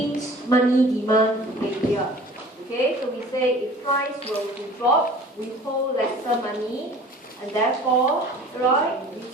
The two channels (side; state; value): both; normal; correlation 0.45